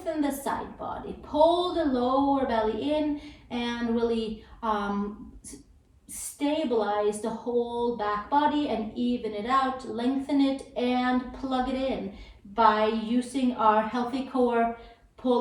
the side body. Pull the lower belly in and really stabilize the whole back body and even it out. Lengthen it and plug it in by using our healthy core,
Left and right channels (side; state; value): both; identical; correlation 1.00